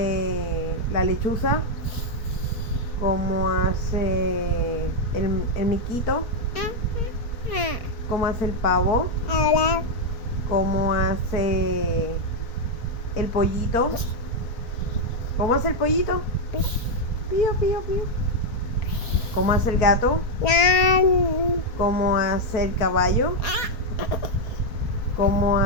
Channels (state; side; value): late; right; 4.3 ms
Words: la lechuza? ¿Cómo hace el miquito? ¿Cómo hace el pavo? ¿Cómo hace el pollito? ¿Cómo hace el pollito? Pío, pío, pío. ¿Cómo hace el gato? ¿Cómo hace el caballo? ¿Cómo